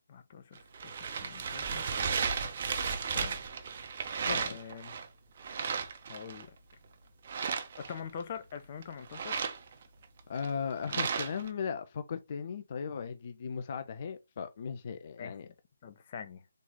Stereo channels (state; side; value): inverted; both; correlation -0.72